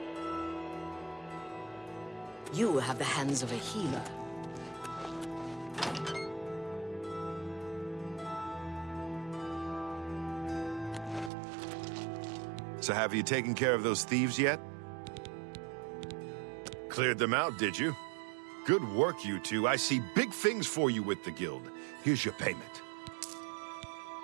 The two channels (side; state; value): left; drops out; at 11.3 s